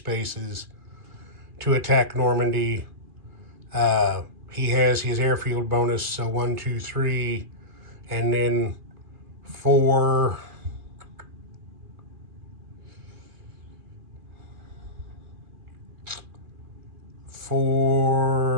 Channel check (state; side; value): late; left; 2.4 ms